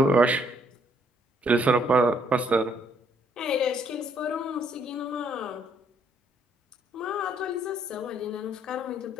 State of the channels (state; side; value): normal; both; correlation 0.68